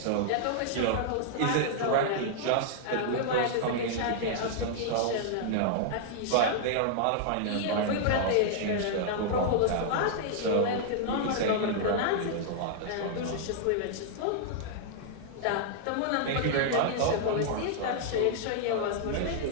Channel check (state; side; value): different; both; correlation -0.01